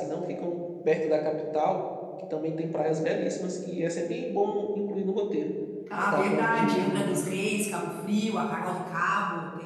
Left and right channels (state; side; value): identical; both; correlation 1.00